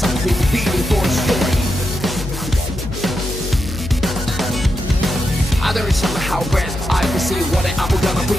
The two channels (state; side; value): noise; left; hum, 8 dB below the sound